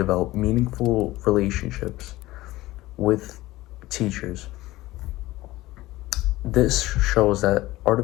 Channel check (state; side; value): quieter; right; 17.8 dB